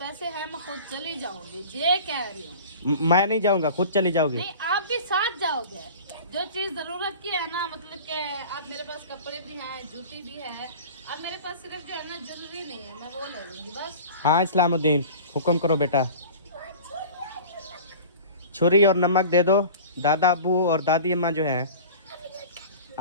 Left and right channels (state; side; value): inverted; both; correlation -0.39